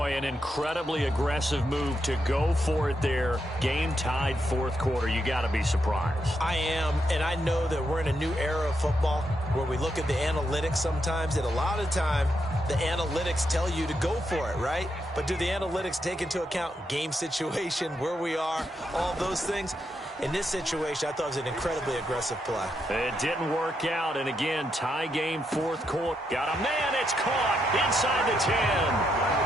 an incredibly aggressive move to go for it there. Game tied 4th quarter. You got to be surprised. I am, and I know that we're in a new era of football where we look at the analytics sometimes, and a lot of time the analytics tell you to go for it, right? But do the analytics take into account game situation, where we are, all those things? In this situation, I thought it was an incredibly aggressive play. It didn't work out, and again, tie game 4th quarter. Got a man, it's caught inside the 10.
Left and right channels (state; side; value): normal; both; correlation 0.81